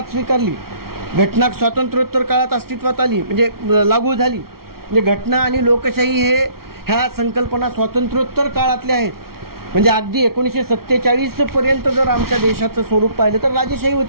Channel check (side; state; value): left; late; 0.94 ms